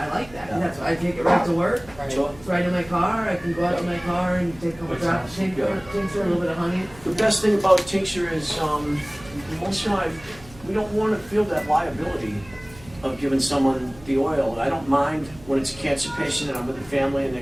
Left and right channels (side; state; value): right; noise; hum, 21 dB below the sound